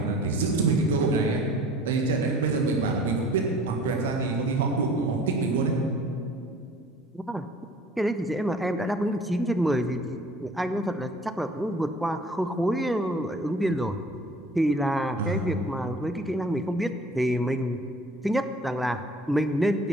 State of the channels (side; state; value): both; normal; correlation 0.49